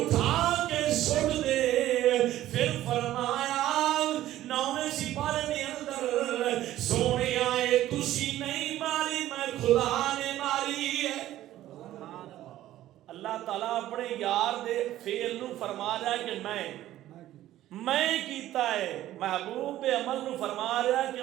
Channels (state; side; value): quieter; left; 13.9 dB